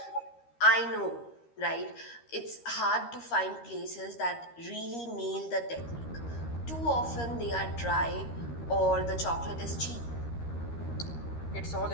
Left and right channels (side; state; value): right; late; 13 ms